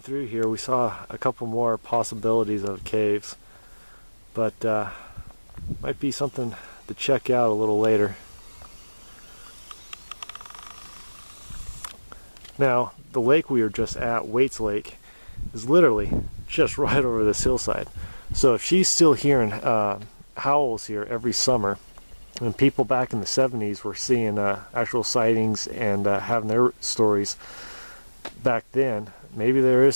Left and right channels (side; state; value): both; inverted; correlation -1.00